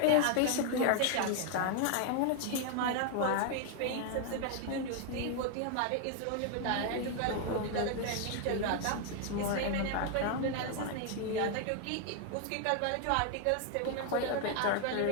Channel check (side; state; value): both; different; correlation 0.00